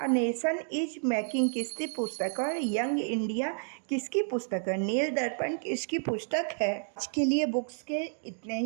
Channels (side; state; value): left; silent; 57 dB below the other